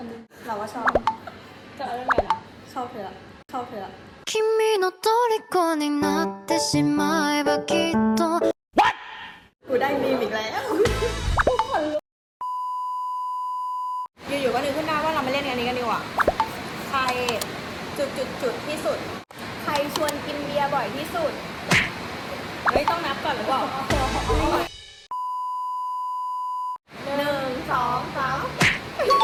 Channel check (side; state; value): both; identical; correlation 1.00